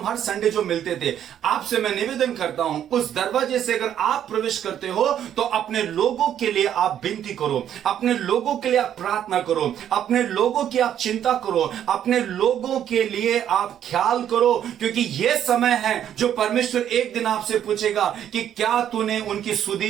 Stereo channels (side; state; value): left; quieter; 10.1 dB